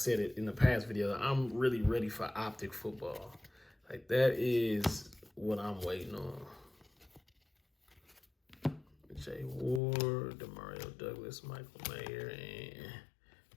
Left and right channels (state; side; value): drops out; right; at 9.8 s